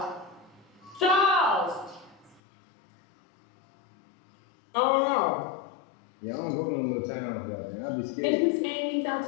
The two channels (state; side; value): drops out; right; at 2.4 s